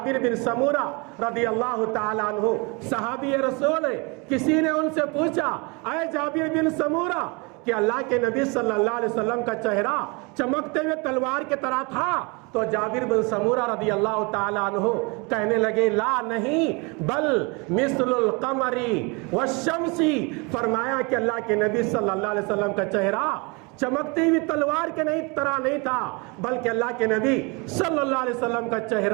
بن سمورہ رضی اللہ تعالیٰ عنہ صحابی رسول ہے، کسی نے ان سے پوچھا اے جابر بن سمورہ کہ اللہ کے نبی صلی اللہ علیہ وسلم کا چہرہ چمکتے ہوئے تلوار کی طرح تھا؟ تو جابر بن سمورہ رضی اللہ تعالیٰ عنہ کہنے لگے لا نہیں بل مثل القمر والشمس، فرمایا کہ اللہ کے نبی صلی اللہ علیہ وسلم کا چہرہ چمکتی ہوئی تلوار کے طرح نہیں تھا، بلکہ اللہ کے نبی صلی اللہ علیہ وسلم کا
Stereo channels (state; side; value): quieter; left; 29.3 dB